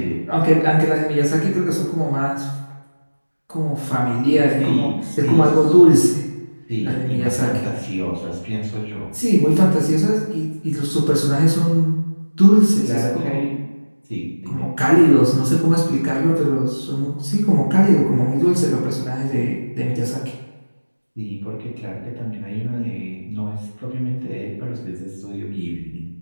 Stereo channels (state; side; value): inverted; both; correlation -1.00